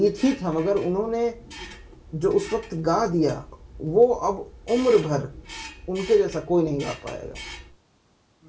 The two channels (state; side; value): identical; both; correlation 1.00